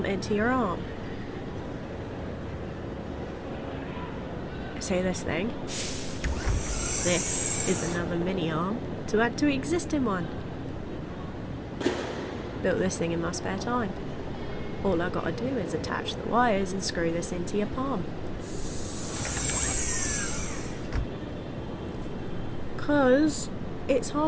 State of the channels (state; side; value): identical; both; correlation 1.00